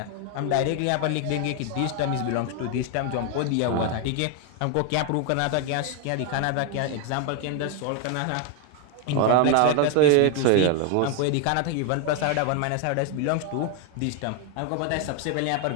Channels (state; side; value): different; both; correlation 0.01